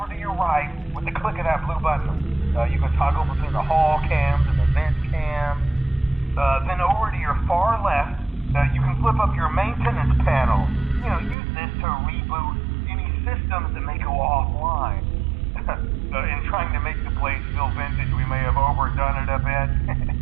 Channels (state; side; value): drops out; left; at 11.4 s